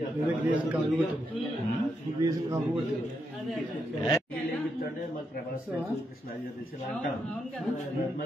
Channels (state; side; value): normal; both; correlation 0.81